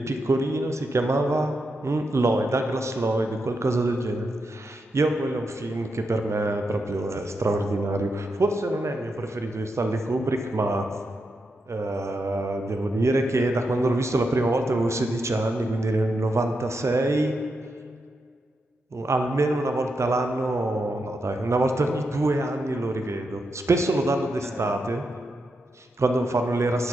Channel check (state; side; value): normal; both; correlation 0.85